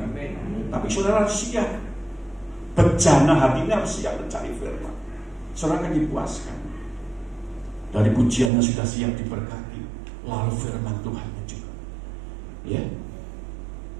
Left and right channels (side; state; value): left; drops out; at 8.5 s